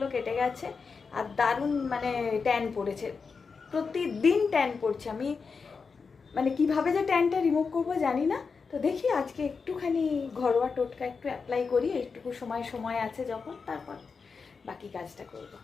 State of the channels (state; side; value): quieter; right; 5.1 dB